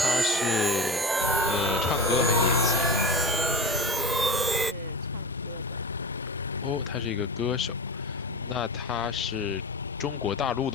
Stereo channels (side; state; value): both; normal; correlation 0.29